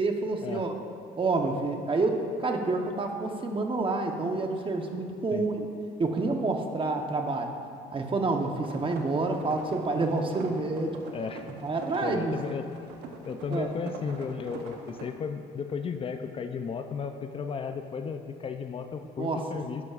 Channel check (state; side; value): normal; both; correlation 0.60